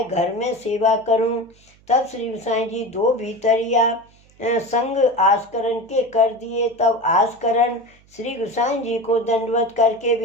घर में सेवा करूं। तब श्री गोसाई जी दो भीतरिया संग आस्करण के कर दिए। तब आस्करण श्री गोसाई जी को दंडवत करके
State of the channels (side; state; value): right; noise; hum, 30 dB below the sound